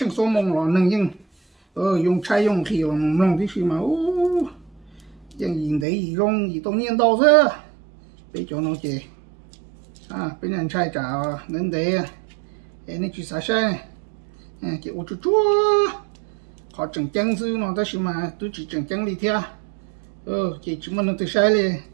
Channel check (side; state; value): left; drops out; at 5.9 s